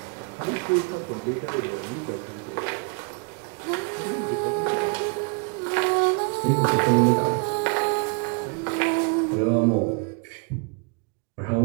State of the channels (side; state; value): left; quieter; 34.8 dB